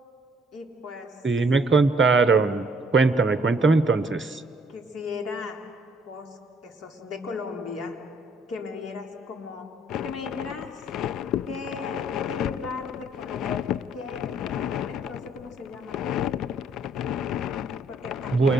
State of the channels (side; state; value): both; normal; correlation 0.64